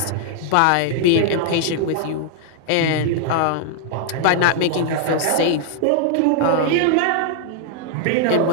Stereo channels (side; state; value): both; different; correlation 0.00